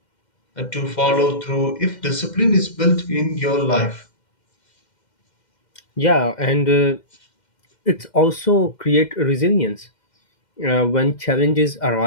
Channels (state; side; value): late; right; 2.1 ms